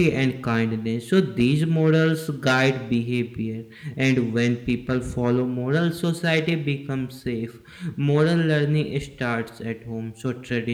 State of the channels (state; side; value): identical; both; correlation 1.00